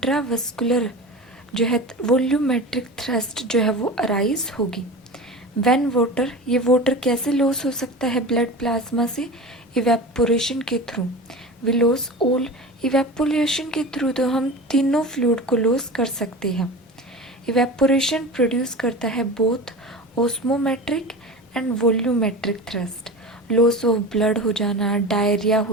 जो है वॉल्यूमेट्रिक थ्रस्ट जो है वो अराइज होगी। व्हेन वाटर, ये वाटर कैसे लॉस हो सकता है ब्लड प्लाज्मा से? इवेपोरेशन के through. We loss all, evaporation के थ्रू तो हम तीनों फ्लूइड को लॉस कर सकते हैं। इवेपोरेशन प्रोड्यूस करता है both osmometric and volumetric thirst. Loss of blood हो जाना, डायरिया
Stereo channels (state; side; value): normal; both; correlation 0.31